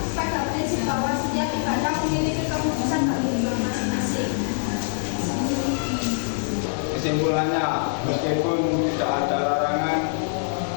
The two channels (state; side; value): silent; right; 58 dB below the other